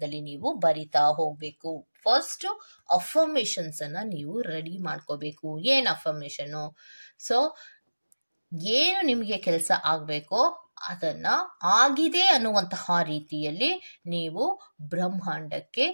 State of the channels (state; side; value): inverted; both; correlation -1.00